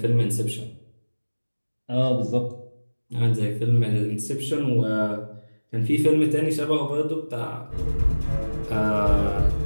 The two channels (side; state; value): both; inverted; correlation -1.00